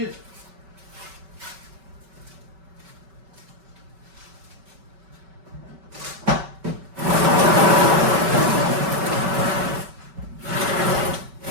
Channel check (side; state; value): left; late; 5.2 ms